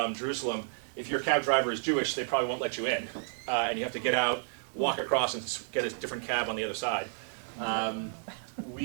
Jerusalem, if your cab driver is Jewish, they probably won't let you in. And you have to get out, walk across, and get a different cab on the other side.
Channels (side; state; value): left; silent; digital silence